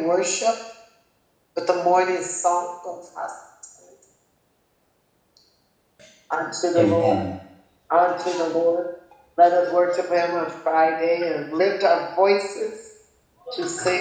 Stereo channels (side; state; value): both; identical; correlation 1.00